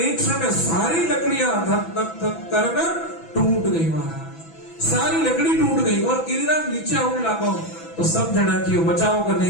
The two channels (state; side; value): late; right; 6.0 ms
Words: क्षण में सारी लकड़ियां धक धक धक करना टूट गई महाराज, सारी लकड़ी टूट गई। और गिरिराज नीचे आने लगा तो सब जना की बचाओ का